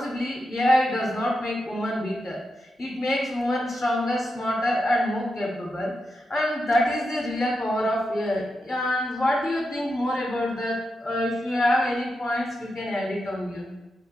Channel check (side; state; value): both; normal; correlation 0.87